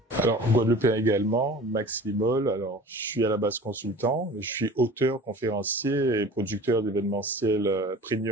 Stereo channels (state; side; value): normal; both; correlation 0.41